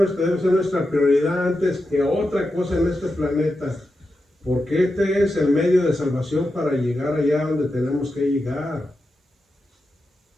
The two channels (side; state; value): both; normal; correlation 0.89